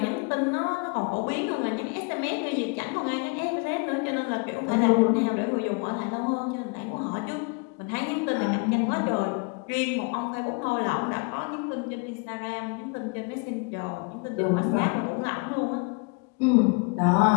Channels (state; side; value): quieter; right; 33.4 dB